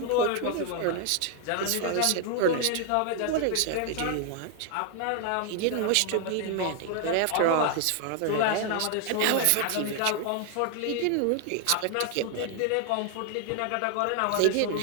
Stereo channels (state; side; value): different; both; correlation 0.00